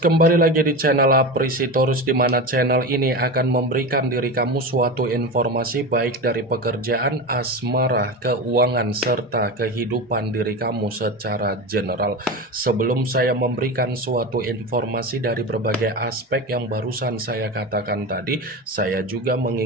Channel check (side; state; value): both; normal; correlation 0.24